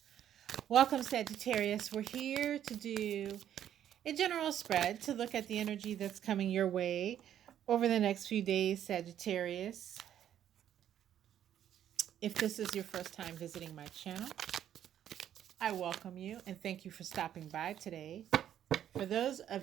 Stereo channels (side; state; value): left; quieter; 10.4 dB